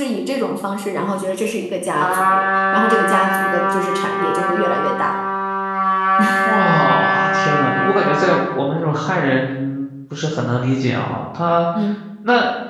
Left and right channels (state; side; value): identical; both; correlation 1.00